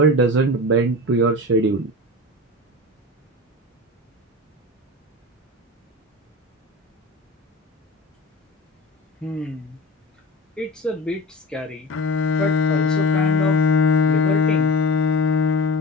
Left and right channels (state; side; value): normal; both; correlation 0.33